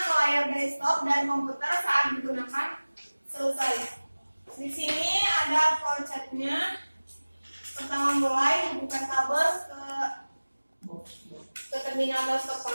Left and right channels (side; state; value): both; inverted; correlation -1.00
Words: ke layar desktop dan komputer saat digunakan. Selesai. Di sini ada flowchartnya. Pertama mulai buka kabel ke terminal atau stop